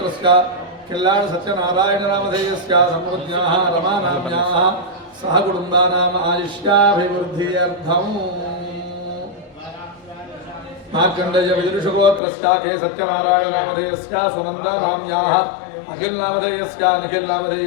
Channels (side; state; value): right; drops out; at 12.2 s